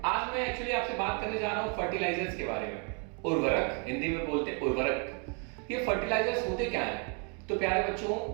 आज मैं एक्चुअली आपसे बात करने जा रहा हूँ फर्टिलाइजर्स के बारे में। उर्वरक, हिंदी में बोलते हैं उर्वरक। ये फर्टिलाइजर्स होते क्या हैं? तो प्यारे बच्चों,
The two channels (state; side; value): quieter; left; 37.4 dB